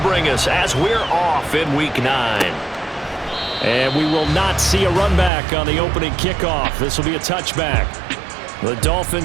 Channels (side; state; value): left; drops out; at 5.3 s